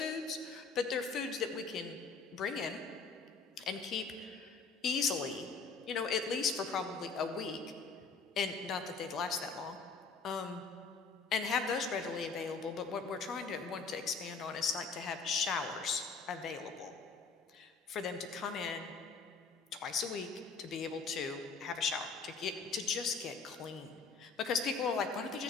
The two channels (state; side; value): quieter; right; 4.8 dB